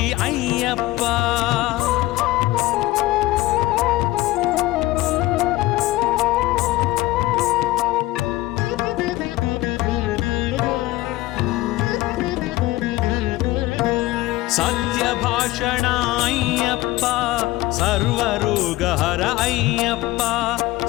అయ్యప్ప సత్యభాషణ అయ్యప్ప సర్వరోగహర అయ్యప్ప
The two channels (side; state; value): right; quieter; 18.0 dB